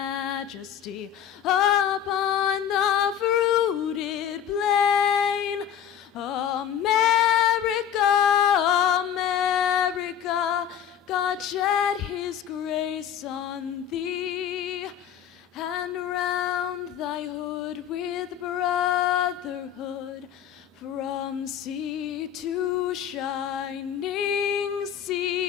upon the fruited plain. America, America, God shed his grace on thee, and round thy hood with brotherhood, from sea to shining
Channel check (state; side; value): quieter; right; 9.4 dB